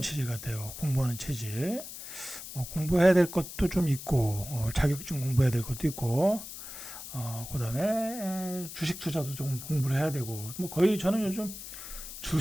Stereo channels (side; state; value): left; noise; hiss, 11 dB below the sound